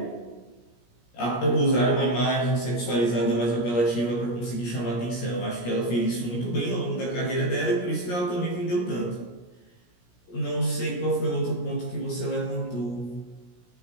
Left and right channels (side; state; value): right; late; 17 ms